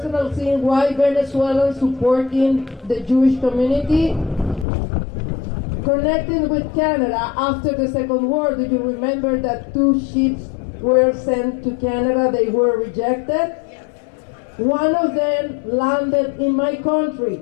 thing, why Venezuelans supporting the Jewish community, connecting with Canada after the Second War. Do you remember that 2 ships were sent to Canada? They were rejected. One of them landed in my country.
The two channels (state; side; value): drops out; right; at 4.7 s